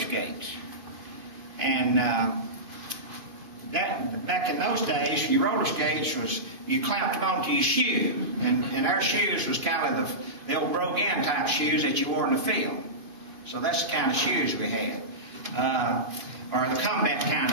And back in those days, your roller skates was, you clamped them onto your shoe. And our shoes was kind of the old bhlogan type shoes that you wore in the field. So that's the kind of shoes we had. Or the combat kind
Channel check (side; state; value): left; late; 2.5 ms